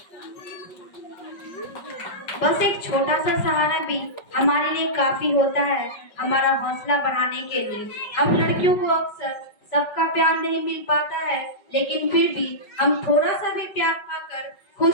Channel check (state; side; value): late; right; 5.3 ms